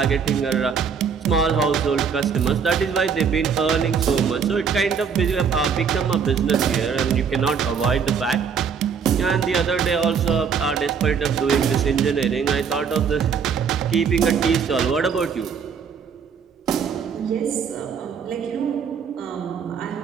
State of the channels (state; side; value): quieter; left; 6.5 dB